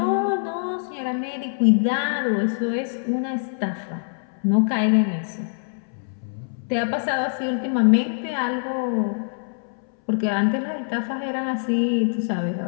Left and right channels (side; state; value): right; silent; 63 dB below the other